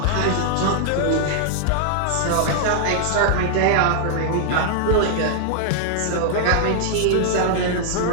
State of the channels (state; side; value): different; both; correlation 0.00